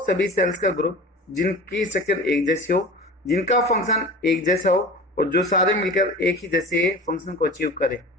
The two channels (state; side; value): normal; both; correlation 0.36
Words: सेल्स का ग्रुप जिनकी स्ट्रक्चर एक जैसी हो, जिनका फंक्शन एक जैसा हो और जो सारे मिलकर एक ही जैसे फंक्शन को अचीव करे,